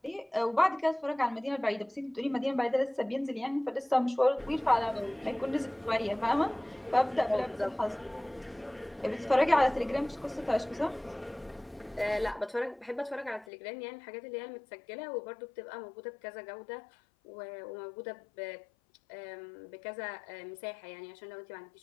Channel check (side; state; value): right; drops out; at 13.5 s